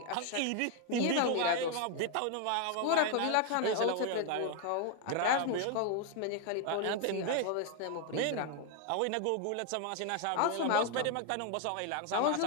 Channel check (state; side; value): different; both; correlation 0.01